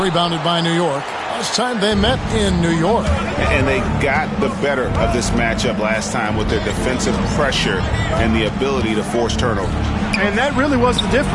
by New York. Last time they met in New York. And they got the better of this matchup last time with their defensive pressure and the ability to force turnover. And that really was the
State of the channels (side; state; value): both; identical; correlation 1.00